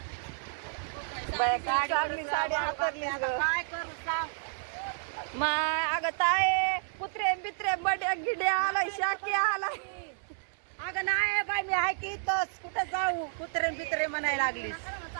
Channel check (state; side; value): silent; left; digital silence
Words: चांगली साडी हातरली आता काय करू सांग. माय अगं ताय कुत्रे बित्रे बड्या गिड्या आलाय शाकी आलाय. अगं नाही बाई मी आहे की इथंच कुठं जाऊ कुत्रेन बित्रे म्हणायला लागलीस.